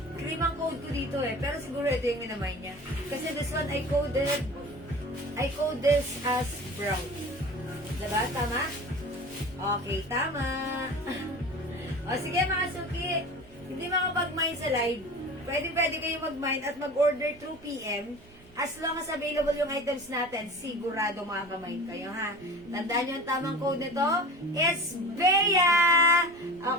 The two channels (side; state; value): right; noise; rumble, 24 dB below the sound